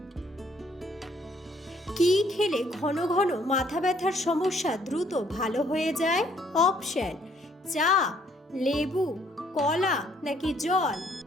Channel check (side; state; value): both; normal; correlation 0.65